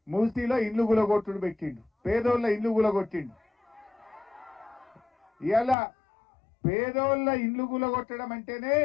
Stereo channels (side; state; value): right; drops out; at 5.8 s